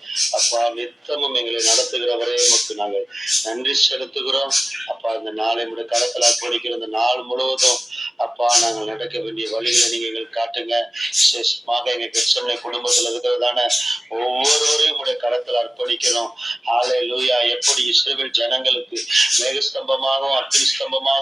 அப்பா, நித்தமும் எங்களை நடத்துகிறவரே உமக்கு நாங்கள் நன்றி செலுத்துகிறோம் அப்பா. இந்த நாளை முடி கடத்தலா படிக்கிற இந்த நாள் முழுவதும் அப்பா நாங்கள் நடக்க வேண்டிய வழிகளை நீங்க எங்களுக்கு காட்டுங்க. விசேஷமாக எங்க கிறிஸ்தவ குடும்பத்தில் இருக்கிறதான ஒவ்வொருவரையும் உடைய கடத்தல அர்ப்பணிக்கிறோம். ஹல்லேலூயா. எப்படி இஸ்ரவேல் ஜனங்களுக்கு மேகஸ்தம்பமாகவும் அக்னி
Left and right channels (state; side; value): normal; both; correlation 0.96